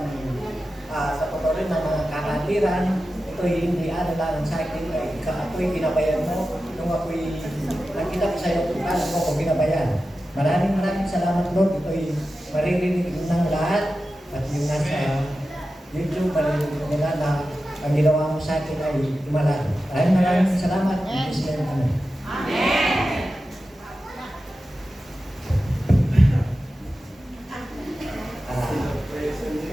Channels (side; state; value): both; normal; correlation 0.93